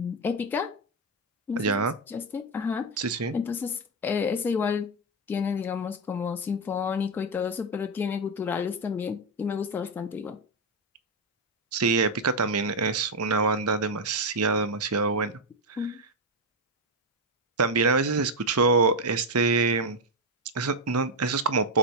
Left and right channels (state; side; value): normal; both; correlation 0.05